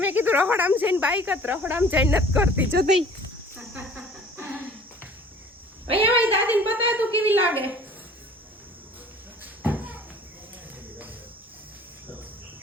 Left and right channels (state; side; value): normal; both; correlation 0.49